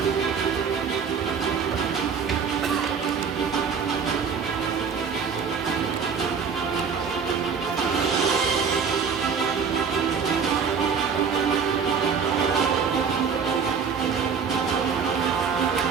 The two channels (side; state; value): left; quieter; 6.2 dB